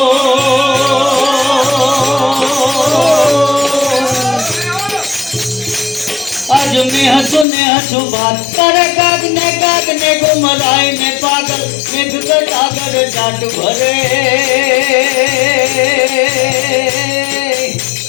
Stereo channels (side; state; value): right; drops out; at 7.5 s